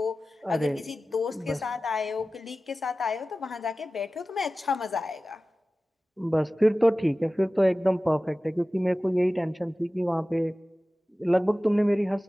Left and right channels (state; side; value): normal; both; correlation 0.96